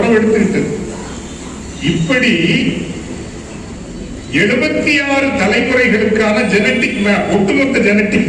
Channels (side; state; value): both; identical; correlation 1.00